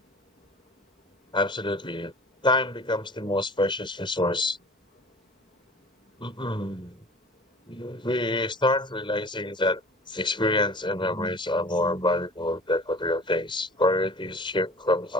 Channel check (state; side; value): normal; both; correlation 0.43